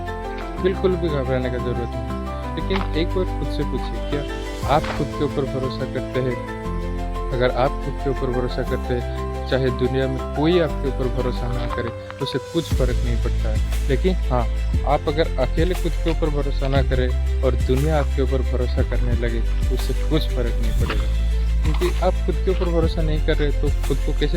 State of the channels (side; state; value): both; identical; correlation 1.00